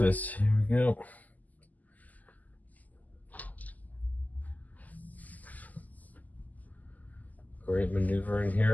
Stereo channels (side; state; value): right; late; 0.080 ms